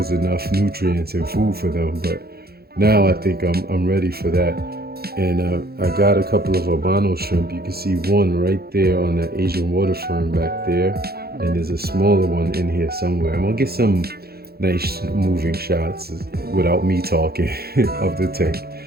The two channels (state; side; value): late; left; 0.46 ms